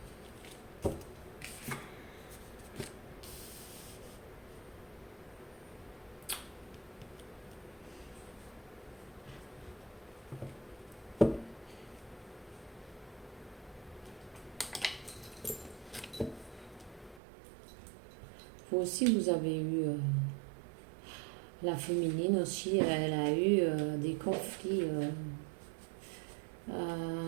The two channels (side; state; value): left; drops out; at 17.2 s